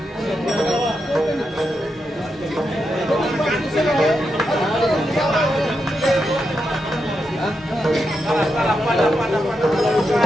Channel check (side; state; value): both; normal; correlation 0.85